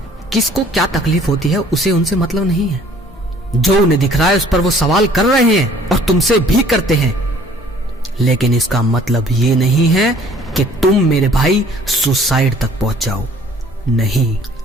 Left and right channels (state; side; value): normal; both; correlation 0.55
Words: किसको क्या तकलीफ होती है उसे उनसे मतलब नहीं है। जो उन्हें दिख रहा है उस पर वो सवाल कर रहे हैं, और तुमसे भी करते हैं, लेकिन इसका मतलब ये नहीं है कि तुम मेरे भाई सुसाइड तक पहुंच जाओ। नहीं,